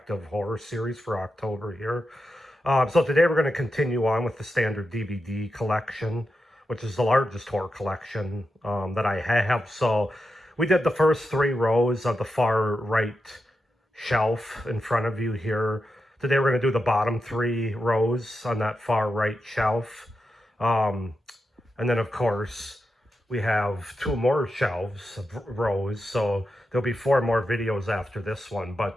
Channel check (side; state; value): both; normal; correlation 0.88